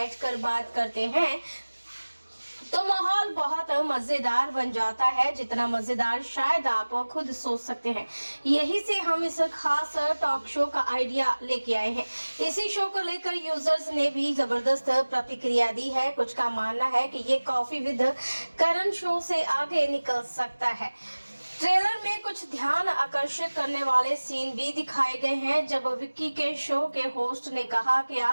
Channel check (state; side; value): inverted; both; correlation -1.00